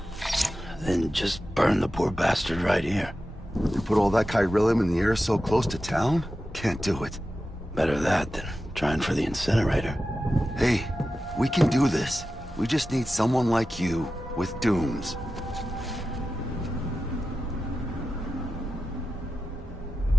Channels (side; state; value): both; normal; correlation 0.92